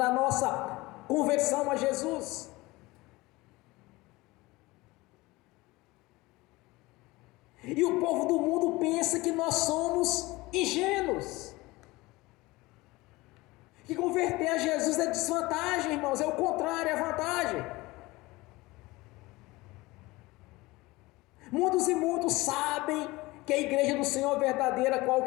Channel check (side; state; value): right; quieter; 21.1 dB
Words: nossa conversão a Jesus. E o povo do mundo pensa que nós somos ingênuos. Que converter a Jesus é desvantagem, irmãos, é o contrário, é vantagem. Muitos e muitos sabem que a igreja do Senhor é verdadeira, qual